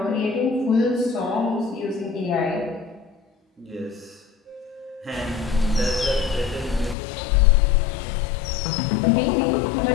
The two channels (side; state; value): right; drops out; at 7.0 s